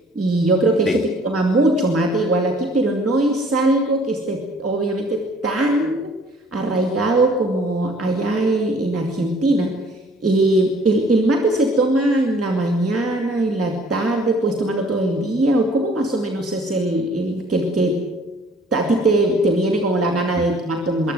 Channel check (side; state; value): both; normal; correlation 0.56